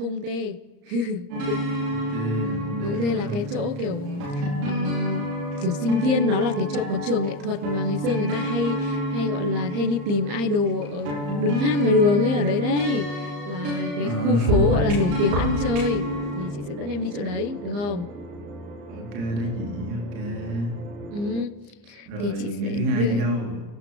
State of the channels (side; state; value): left; late; 34 ms